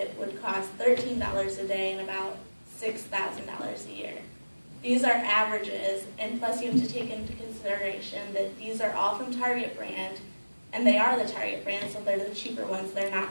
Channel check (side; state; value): both; inverted; correlation -1.00